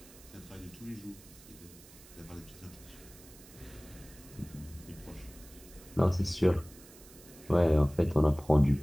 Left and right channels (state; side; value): noise; right; hiss, 21 dB below the sound